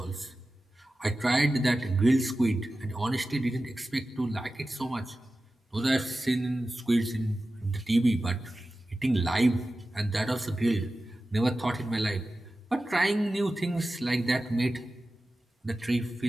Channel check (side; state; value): both; normal; correlation 0.94